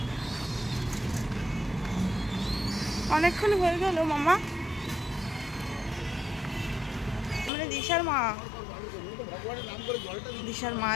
অনেকক্ষণ হয়ে গেল মামা, মানে দিশার মা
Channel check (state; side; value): drops out; right; at 7.5 s